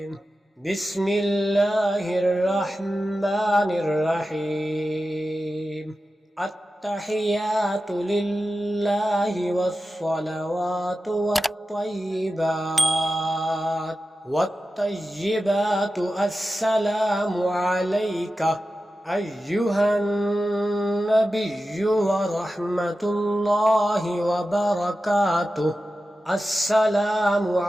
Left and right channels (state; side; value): normal; both; correlation 0.93